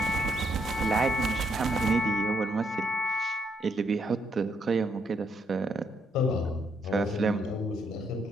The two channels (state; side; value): normal; both; correlation 0.74